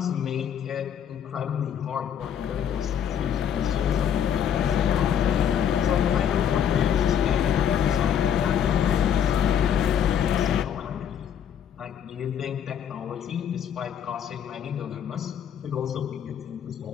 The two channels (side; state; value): right; quieter; 8.8 dB